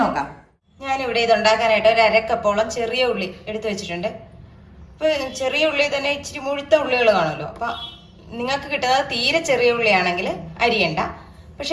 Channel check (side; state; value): both; identical; correlation 1.00